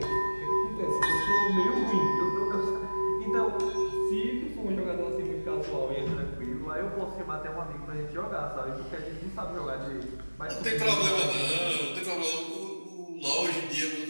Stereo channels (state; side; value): inverted; both; correlation -1.00